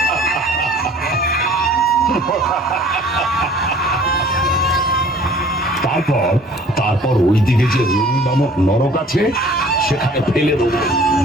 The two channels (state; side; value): normal; both; correlation 0.51